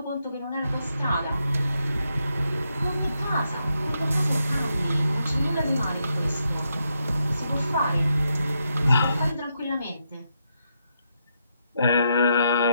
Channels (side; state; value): both; inverted; correlation -0.81